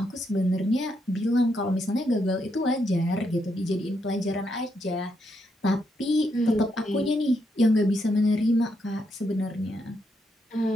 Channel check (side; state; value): both; normal; correlation 0.79